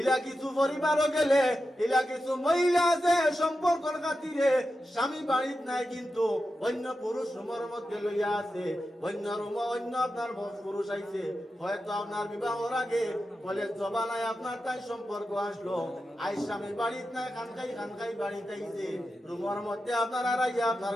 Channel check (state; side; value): normal; both; correlation 0.90